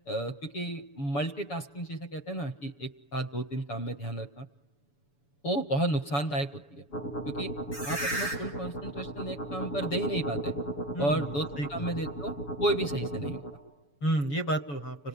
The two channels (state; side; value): late; right; 7.0 ms